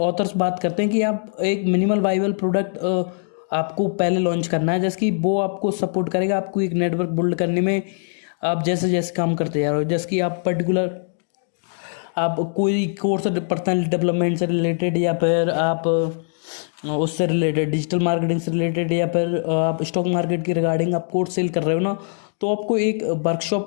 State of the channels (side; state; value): right; silent; digital silence